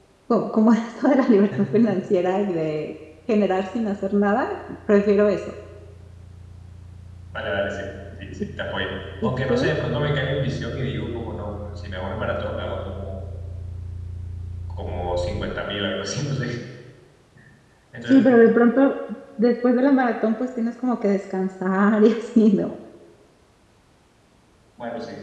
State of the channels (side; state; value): both; identical; correlation 1.00